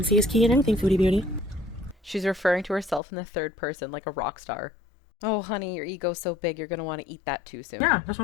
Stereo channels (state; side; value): drops out; right; at 3.0 s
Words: is key in anything, Foodie Beauty. She's referring to herself in the third person like a rock star. Oh, honey, your ego's so big, you're gonna want to eat that too soon. Yeah, that's